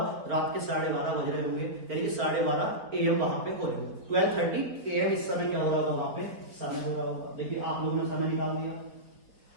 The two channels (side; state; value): left; late; 4.4 ms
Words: रात के 12:30 बज रहे होंगे, यानी कि 12:30 AM वहां पे हो रहे होंगे। 12:30 AM इस समय क्या हो रहा होगा? वहां पे समय हो रहा होगा। देखिए आप लोगों ने समय निकाल दिया।